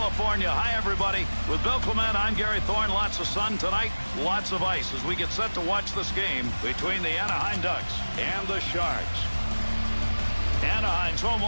Hi, everybody. With Bill Clement, I'm Gary Thorne. Lots of sun tonight, lots of ice as we get set to watch this game between the Anaheim Ducks and the Sharks. Anaheim's home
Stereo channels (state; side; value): inverted; both; correlation -1.00